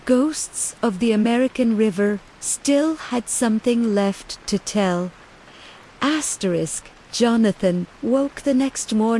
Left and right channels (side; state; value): both; identical; correlation 1.00